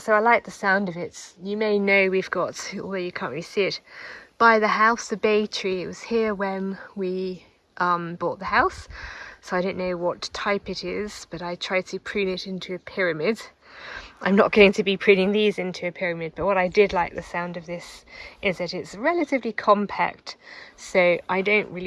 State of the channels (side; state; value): both; identical; correlation 1.00